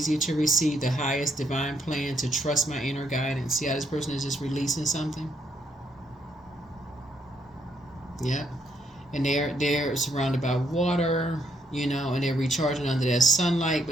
to receive the highest divine plan, to trust my inner guidance. See how this person is just releasing something? Yep. And they're surrounded by water, and they're recharging under that sunlight.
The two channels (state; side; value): normal; both; correlation 0.73